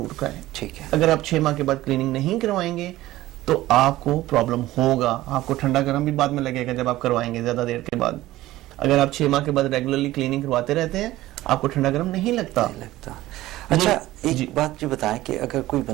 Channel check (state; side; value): quieter; left; 16.3 dB